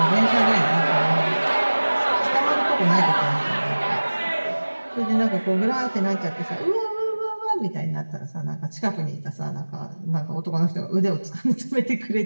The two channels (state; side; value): inverted; both; correlation -1.00